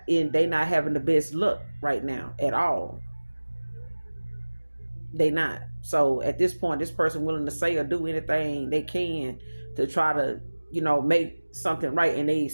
having the best luck right now at all. They not. So at this point, this person willing to say or do anything they can to try to, make something right, and they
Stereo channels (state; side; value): inverted; both; correlation -1.00